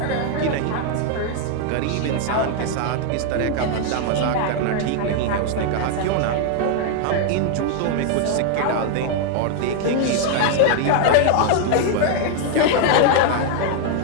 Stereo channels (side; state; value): both; different; correlation 0.00